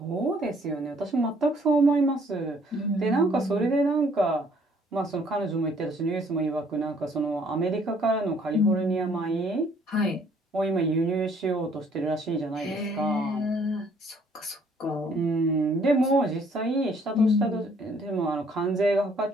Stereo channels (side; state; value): both; normal; correlation 0.62